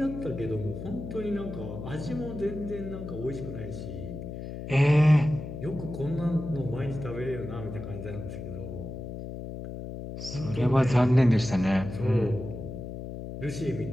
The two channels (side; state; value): left; noise; hum, 8 dB below the sound